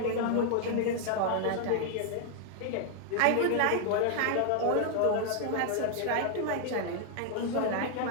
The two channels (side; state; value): both; different; correlation 0.00